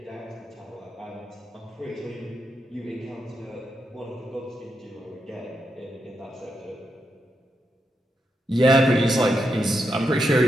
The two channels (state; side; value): normal; both; correlation 0.84